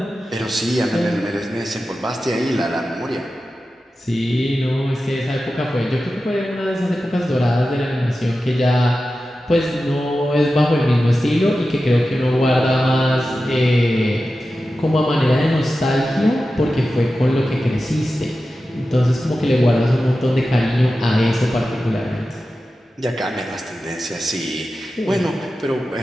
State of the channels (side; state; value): both; normal; correlation 0.93